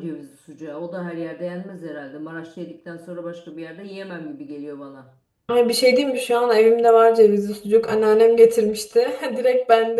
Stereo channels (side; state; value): both; identical; correlation 1.00